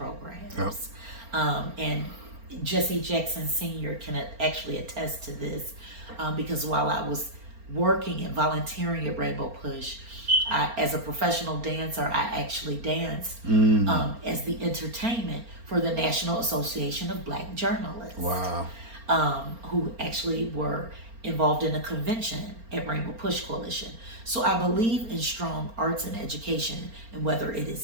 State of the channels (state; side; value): late; left; 4.4 ms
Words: And Jesse Jackson Sr. can actually attest to this, because while I was working and volunteering at Rainbow Push, as a professional dancer, I actually danced as the entertainment for the National Association of Black Journalists. Wow. Who actually were involved in a convention at Rainbow Push Coalition. So I believe in strong arts and education, and whether it